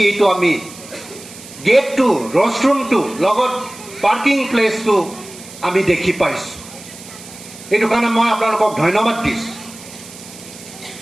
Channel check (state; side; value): noise; right; hiss, 17 dB below the sound